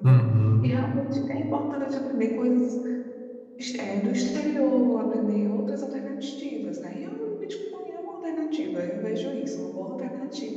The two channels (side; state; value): both; identical; correlation 1.00